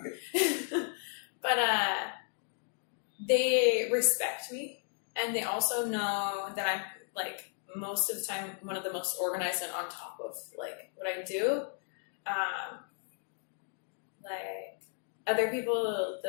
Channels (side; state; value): right; silent; 55 dB below the other